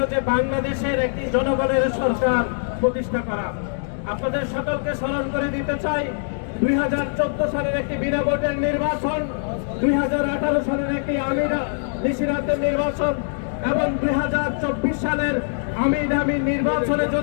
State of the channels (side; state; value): right; silent; digital silence